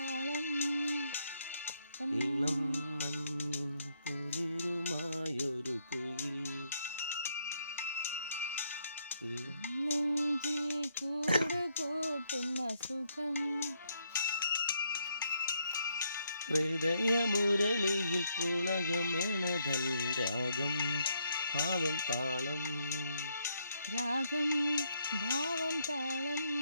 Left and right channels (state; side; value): inverted; both; correlation -0.74